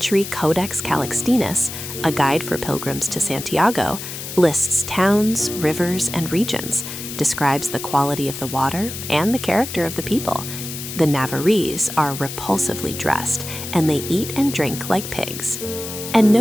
Codex Calixtinus, a guide for pilgrims to Santiago, lists towns, rivers, and regions, describes the quality of the water and the character of the people. The Navarrese are repulsively dressed, and they eat and drink like pigs, and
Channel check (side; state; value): left; noise; hiss, 9 dB below the sound